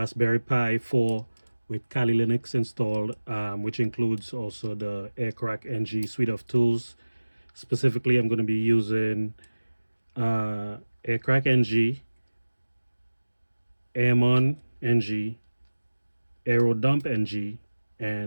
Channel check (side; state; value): both; inverted; correlation -1.00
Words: Pi 4 with Kali Linux installed, which includes also the Aircrack NG suite of tools. Specifically, I'm going to be using Aircrack NG, Airmon NG, Aerodump NG,